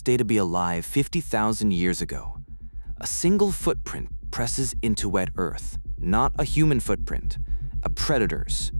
day to be alive 50,000 years ago? A single footprint presses into wet earth, not a human footprint, a predator's.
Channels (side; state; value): both; inverted; correlation -1.00